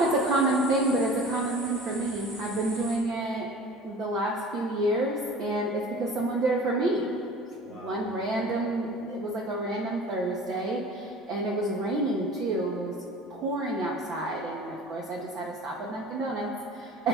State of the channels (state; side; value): normal; both; correlation 0.42